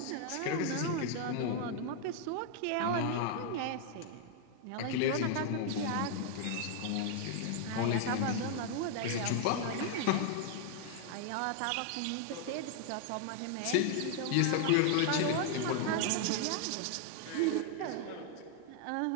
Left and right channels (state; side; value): different; both; correlation 0.00